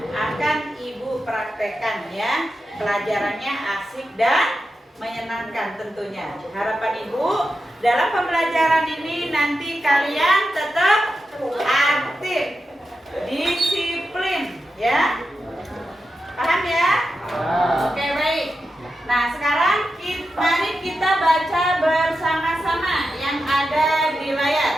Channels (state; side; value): normal; both; correlation 0.90